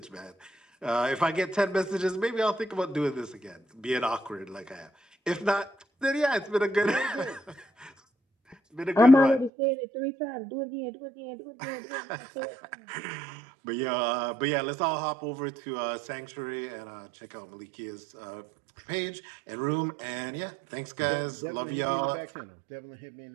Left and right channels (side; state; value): left; drops out; at 9.5 s